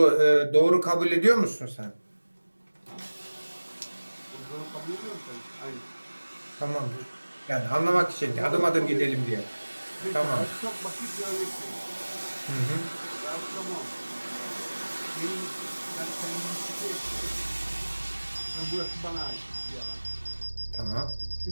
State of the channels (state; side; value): inverted; both; correlation -1.00